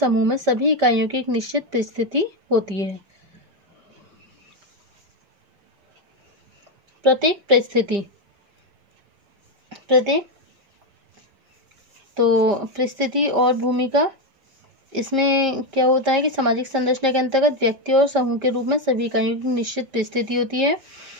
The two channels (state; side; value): late; left; 5.0 ms